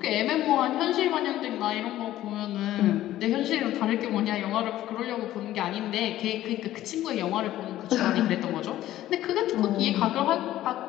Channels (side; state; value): right; quieter; 13.9 dB